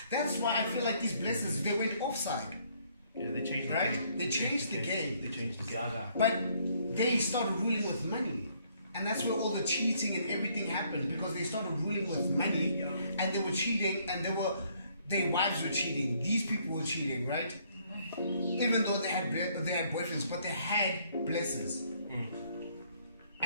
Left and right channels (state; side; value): inverted; both; correlation -0.66